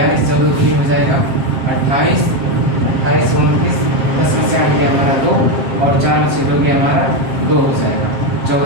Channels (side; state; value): left; late; 7.5 ms